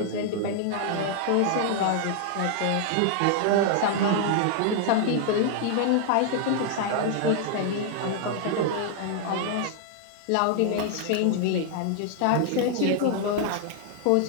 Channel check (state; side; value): different; both; correlation 0.00